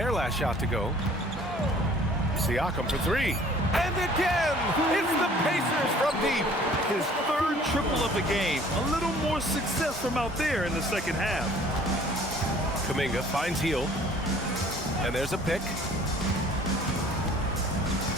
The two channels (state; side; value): normal; both; correlation 0.53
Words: last shot to go. Siakam for 3. And again, it's the Pacers from deep. His 3rd triple of the game. A little more success from out there in the second half. Kuminga finds Hield. And there's a pick.